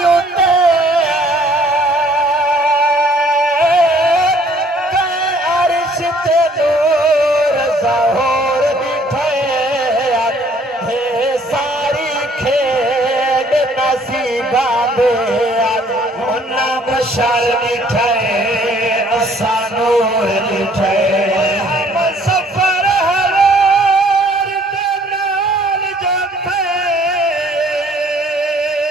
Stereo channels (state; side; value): normal; both; correlation 0.59